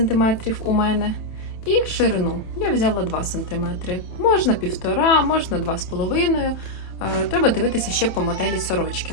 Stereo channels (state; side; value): late; right; 27 ms